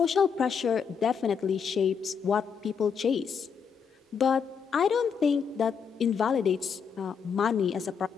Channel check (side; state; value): right; quieter; 6.5 dB